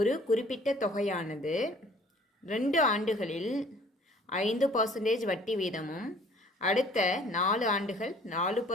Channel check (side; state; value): both; normal; correlation 0.54